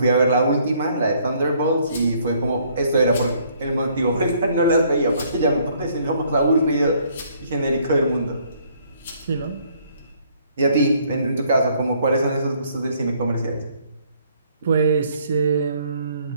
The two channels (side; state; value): both; inverted; correlation -0.64